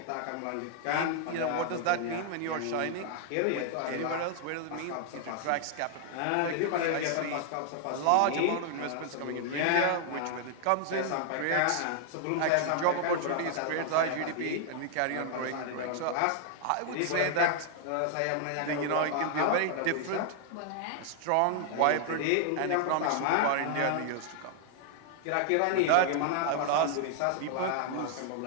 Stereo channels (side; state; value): both; different; correlation 0.00